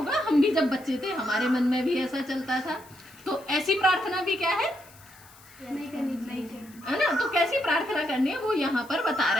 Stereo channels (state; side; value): noise; left; hiss, 24 dB below the sound